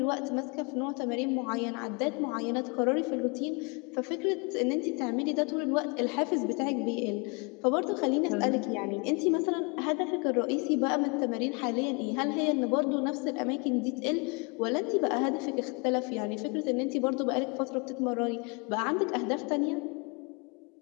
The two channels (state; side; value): quieter; right; 32.2 dB